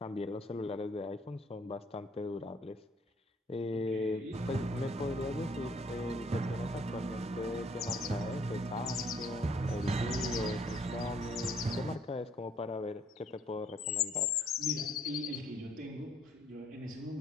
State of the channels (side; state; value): both; normal; correlation 0.64